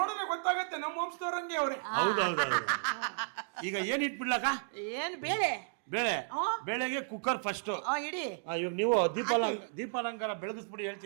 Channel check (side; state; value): left; silent; digital silence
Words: ಗೊತ್ತಾಗತ್ತೆ ನಮ್ಮ ವಂಶದವ್ರಂಗೆ ಅವ್ರೆ. ಹೌದೌದು. ಈಗ ಏನ್ ಇಟ್ಬಿಡ್ಲಕ್ಕ? ಏನ್ ಬೇಳೆ? ಬೇಳೆಗೆ ಕುಕ್ಕರ್ ಫಸ್ಟ್ ಇಡಿ. ಇವಾಗ ನೀವು ದೀಪಾಲಂಕಾರ ಬೆಳಗಿಸ್ಬಿಡಿ